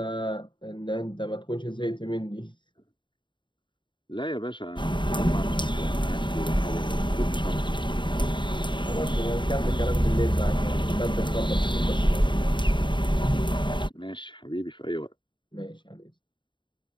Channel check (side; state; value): right; late; 0.23 ms